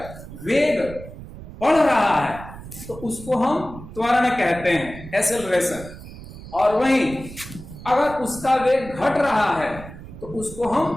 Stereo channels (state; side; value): noise; right; rumble, 14 dB below the sound